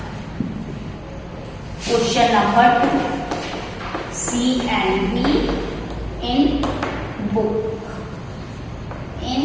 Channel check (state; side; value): identical; both; correlation 1.00